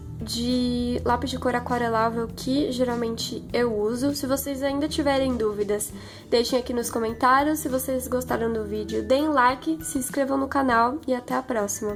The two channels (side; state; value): both; identical; correlation 1.00